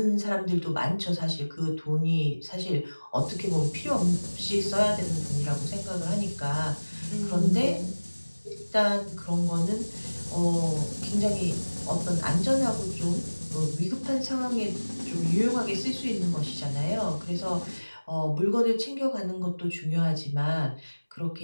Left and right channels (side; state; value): both; inverted; correlation -1.00